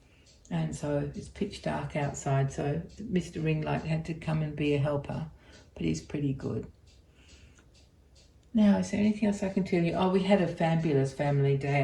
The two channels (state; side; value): identical; both; correlation 1.00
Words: And so it's pitch dark outside, so Mr. Ringlight had to come and be a helper, but he's pretty good. Now, is there anything else I can tell you? Oh, we had a fabulous family